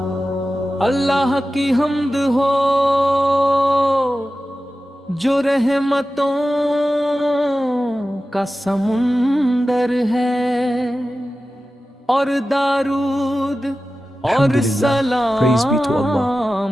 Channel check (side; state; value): both; normal; correlation 0.94